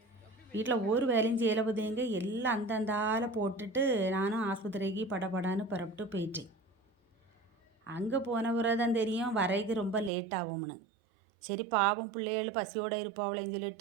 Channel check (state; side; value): drops out; left; at 10.1 s